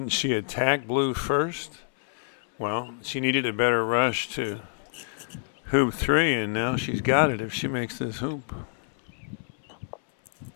she attack blue first? Well, she needed a better rush to hoop 3, and now she's got it if she makes this hoop.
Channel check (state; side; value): silent; right; 60 dB below the other